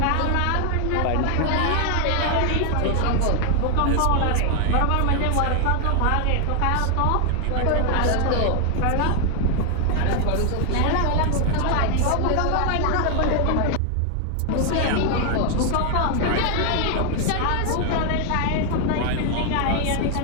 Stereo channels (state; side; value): different; both; correlation 0.00